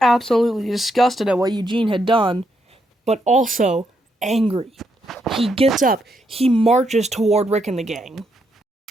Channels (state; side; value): normal; both; correlation 0.78